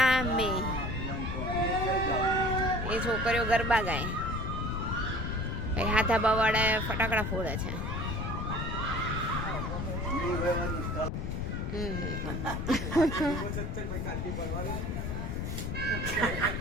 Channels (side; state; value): left; noise; rumble, 2 dB below the sound